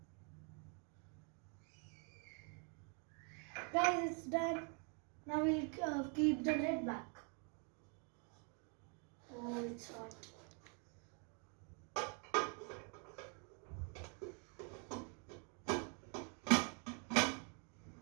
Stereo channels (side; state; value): left; quieter; 38.1 dB